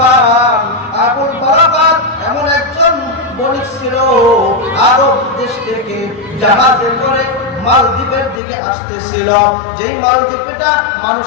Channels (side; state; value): right; drops out; at 8.4 s